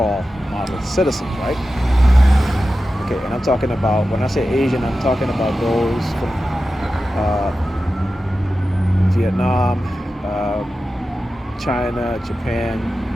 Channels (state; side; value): normal; both; correlation 0.93